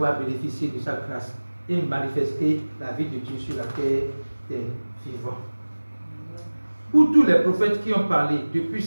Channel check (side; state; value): both; inverted; correlation -1.00